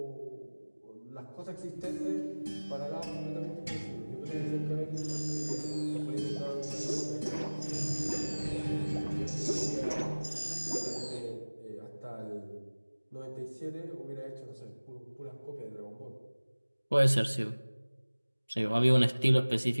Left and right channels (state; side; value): inverted; both; correlation -1.00